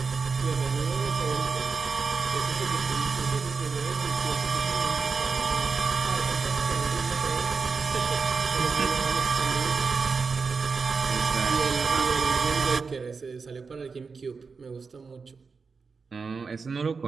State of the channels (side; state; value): left; quieter; 4.9 dB